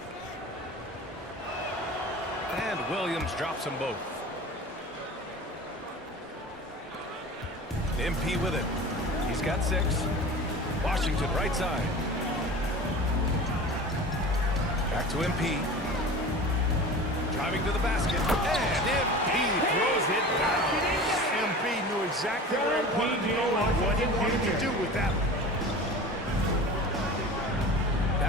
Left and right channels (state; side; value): normal; both; correlation 0.36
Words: And Williams drops them both. MP with it. He's got 6. Washington right side. Back to MP. Driving to the basket. And MP throws it down. MP knew exactly where he wanted to go and what he wanted to do with that one.